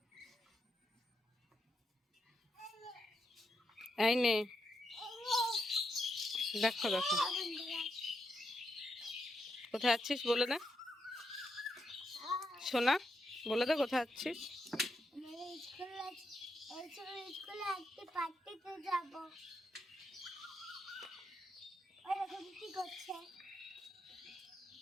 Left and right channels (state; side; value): normal; both; correlation 0.82